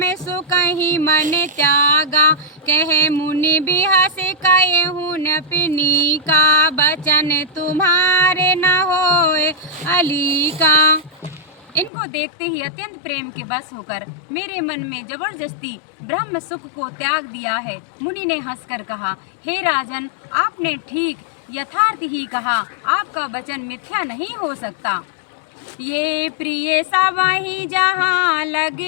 सुकहि मन त्यागा। कहे मुनि बिहस कहूँ न पिनी का, बचन तुम्हारे न होए अली का। इनको देखते ही अत्यंत प्रेम के बस होकर मेरे मन में जबरदस्ती ब्रह्म सुख को त्याग दिया है। मुनि ने हंसकर कहा, हे राजन, आपने ठीक यथार्थ ही कहा, आपका वचन मिथ्या नहीं हो सकता। ये प्रिय सवहि जहाँ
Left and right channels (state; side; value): drops out; right; at 11.9 s